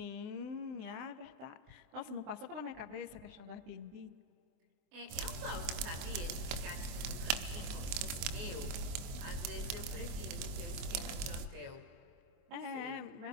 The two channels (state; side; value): late; left; 24 ms